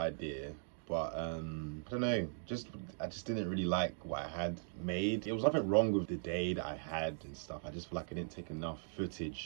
but I don't know, I just didn't really like what I had made. There was nothing wrong with the day that I had and stuff. I just feel like I didn't take enough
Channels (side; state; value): left; silent; digital silence